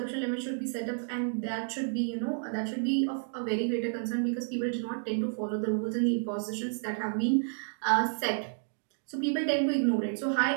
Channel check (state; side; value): silent; left; digital silence